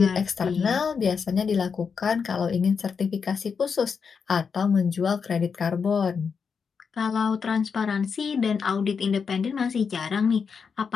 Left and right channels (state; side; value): quieter; right; 5.9 dB